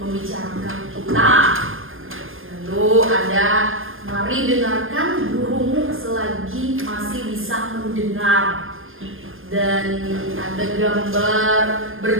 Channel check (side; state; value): left; late; 0.59 ms